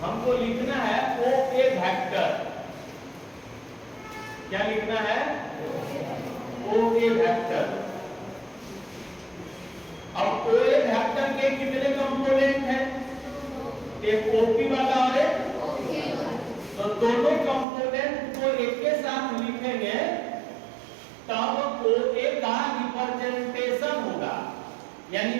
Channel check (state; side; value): drops out; left; at 17.7 s